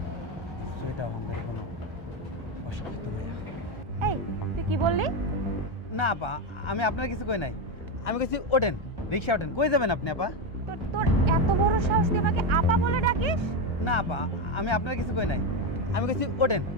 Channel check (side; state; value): both; normal; correlation 0.10